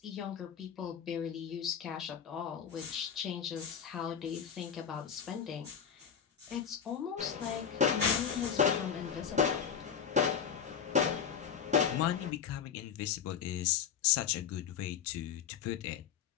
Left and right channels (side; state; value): right; quieter; 7.6 dB